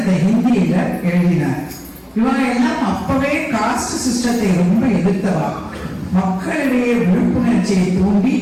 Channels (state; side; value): identical; both; correlation 1.00